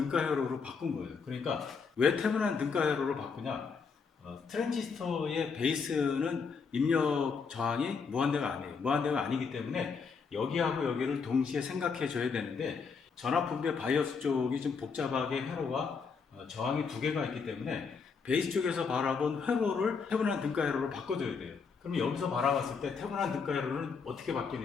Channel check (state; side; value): quieter; right; 5.4 dB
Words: 회로로 바꾼 거예요. 그러니까 왜 태분한 등가 회로로 바꾸냐? 트랜지스터의 베이스는 입력 저항이 무한대가 아니에요. 무한대가 아니기 때문에 여기하고 여기를 동시에 생각해 줘야 되는데 전압분배 바이어스 쪽이 좀 복잡하게 회로가 저항이 두 개가 있기 때문에 베이스 쪽에서 바라본 회로를 태분한 등가 회로로 바꿔줘야 돼요. 그럼 여기서 바라봤을 때 태분한 등가 회로는 어떻게